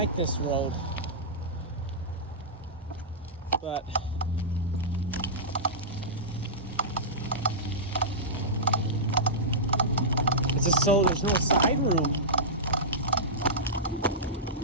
this road, but it's just so there's no side room.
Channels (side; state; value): both; normal; correlation -0.16